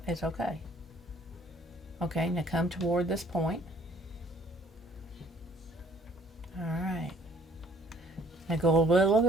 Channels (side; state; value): both; normal; correlation 0.58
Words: it's okay. Okay. Now come toward this point. All right. Now go a little